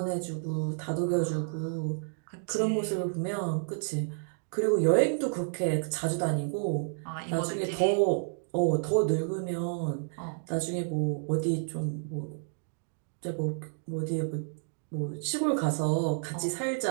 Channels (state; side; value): silent; left; 57 dB below the other